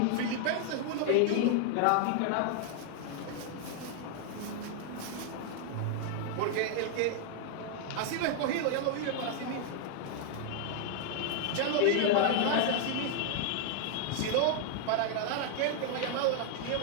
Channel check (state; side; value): different; both; correlation 0.00